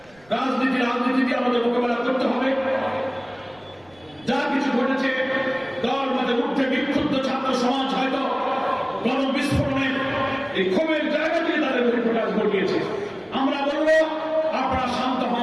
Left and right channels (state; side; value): noise; right; rumble, 30 dB below the sound